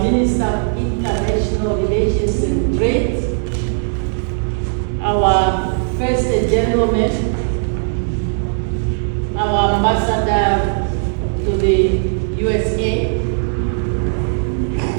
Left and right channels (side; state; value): left; silent; 66 dB below the other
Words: Minister of International Relations and Trade, our First Gentleman, our Ambassador to the USA,